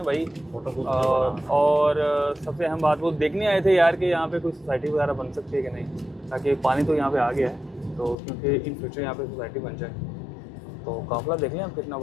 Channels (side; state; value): right; drops out; at 8.2 s